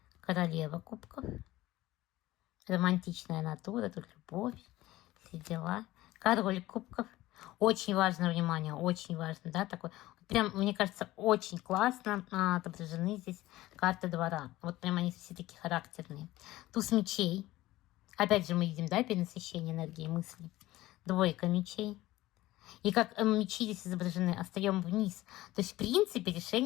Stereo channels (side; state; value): right; quieter; 17.0 dB